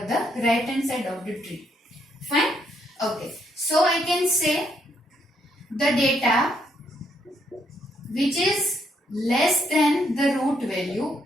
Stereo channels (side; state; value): both; normal; correlation 0.74